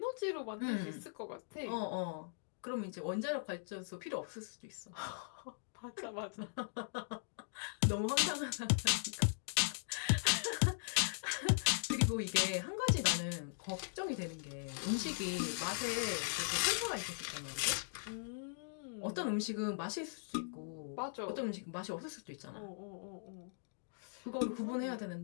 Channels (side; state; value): right; silent; digital silence